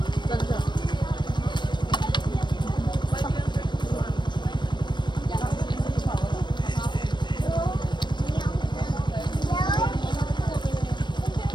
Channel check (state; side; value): late; right; 0.22 ms